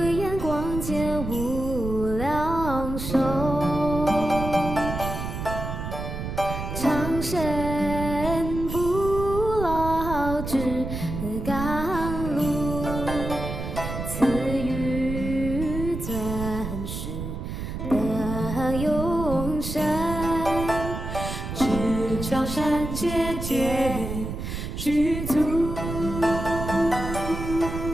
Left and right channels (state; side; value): noise; right; rumble, 6 dB below the sound